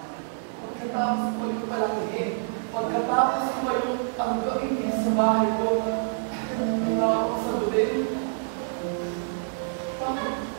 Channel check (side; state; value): left; silent; digital silence